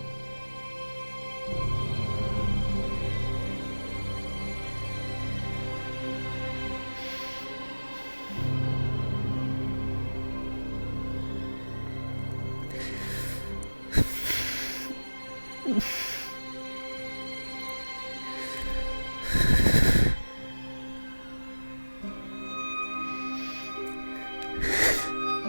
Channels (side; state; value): both; inverted; correlation -1.00